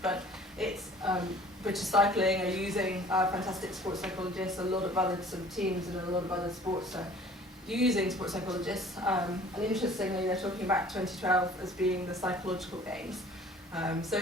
But it's British Cycling are using fantastic sports psychologists. A lot of other sort of teams and a lot of other sports are using sports psychologists. And interestingly, they're talking about 2012 as being the psychological games. So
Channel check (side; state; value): both; normal; correlation 0.50